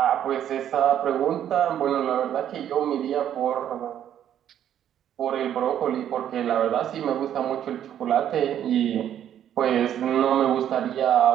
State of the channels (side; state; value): left; quieter; 10.3 dB